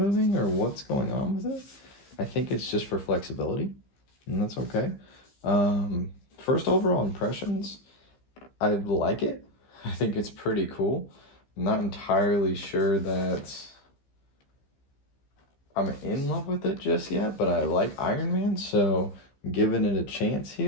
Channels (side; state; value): right; late; 15 ms